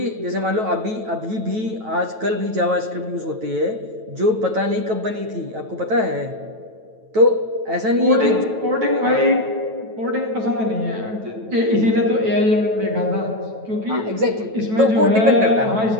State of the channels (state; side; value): late; left; 9.2 ms